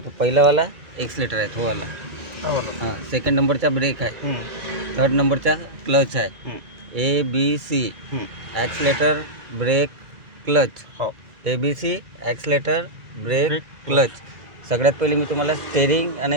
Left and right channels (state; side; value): late; left; 2.3 ms